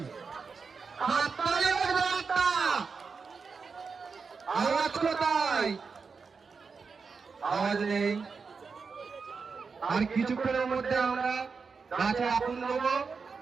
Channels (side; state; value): left; quieter; 5.1 dB